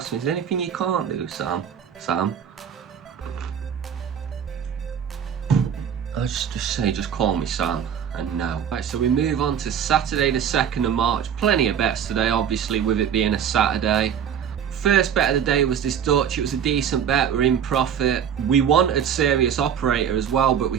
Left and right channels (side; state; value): left; quieter; 8.4 dB